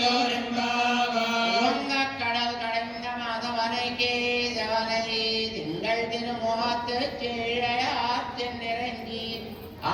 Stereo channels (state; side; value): identical; both; correlation 1.00